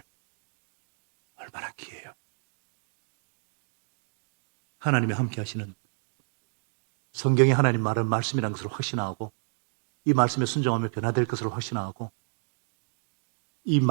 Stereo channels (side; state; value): left; silent; digital silence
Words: 얼마나 귀해요. 하나님이 함께 하시는 성경에 하나님 말은 말씀이라는 것을 확신하고 이 말씀에 순종하며 변화될 것을 확신하고 이